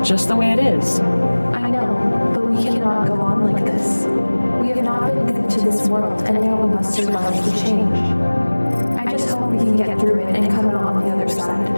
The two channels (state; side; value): inverted; both; correlation -1.00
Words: just the way it is. I know, but we cannot go on like this. We have not been good to this world, and now we must survive the change. I just hope we can get through it and come out on the other